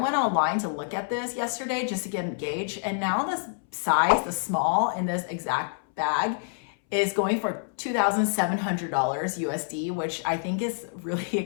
online to look at this yesterday just to get a gauge. And now this size, the small in this exact bag, is going for $2,700 USD, which I think is really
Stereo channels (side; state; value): right; silent; 60 dB below the other